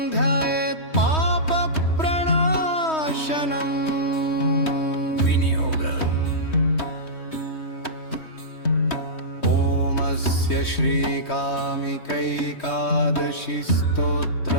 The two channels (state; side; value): late; right; 3.2 ms